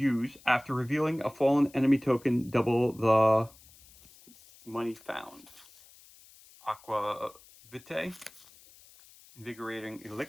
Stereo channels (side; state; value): left; noise; hiss, 25 dB below the sound